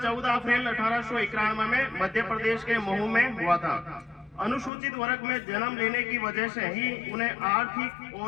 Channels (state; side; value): drops out; right; at 4.7 s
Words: 14 अप्रैल 1891 में मध्य प्रदेश के महू में हुआ था। अनुसूचित वर्ग में जन्म लेने की वजह से ही उन्हें आर्थिक